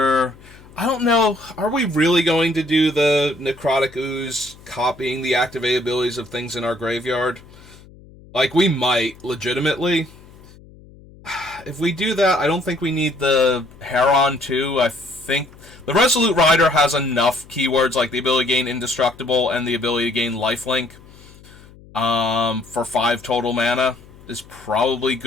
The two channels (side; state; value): left; noise; hum, 23 dB below the sound